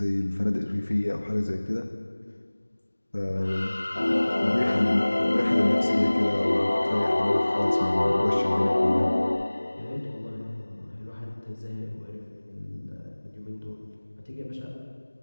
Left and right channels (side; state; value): both; inverted; correlation -1.00